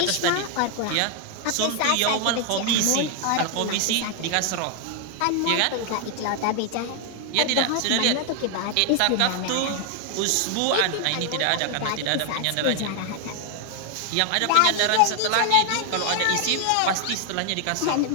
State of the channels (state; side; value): different; both; correlation 0.00